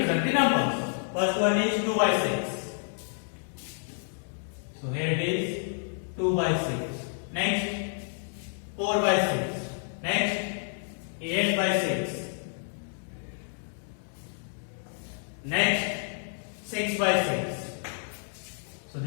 the numbers. First one is 2 by 6. So here it is 2 by 6. Next 4 by 6. Next 8 by 6. Next 6 by 6. So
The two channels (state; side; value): silent; right; digital silence